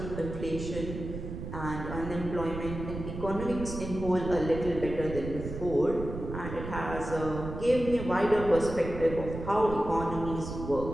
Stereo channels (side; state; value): right; noise; rumble, 8 dB below the sound